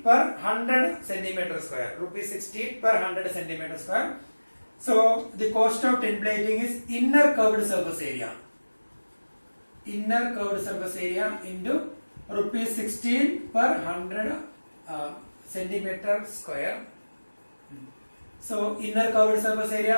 per 100 centimeter square. Rupees 16 per 100 centimeter square. So the cost of tin plating is inner curved surface area. Inner curved surface area into rupees 16 per 100 centimeter square. So inner curved surface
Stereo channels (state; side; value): inverted; both; correlation -1.00